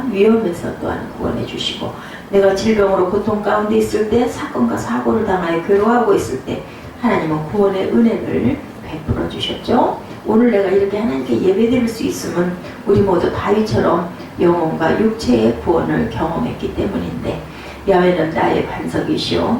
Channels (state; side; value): identical; both; correlation 1.00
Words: 위험에서 또한 구원해 주시고, 내가 질병으로 고통 가운데 있을 때, 사건과 사고를 당하여 괴로워하고 있을 때 하나님은 구원의 은혜를 베풀어 주셨죠. 오늘 내가 이렇게 하나님께 예배드릴 수 있음은 우리 모두 다윗처럼 영혼과 육체의 구원을 경험했기 때문인데, 야훼는 나의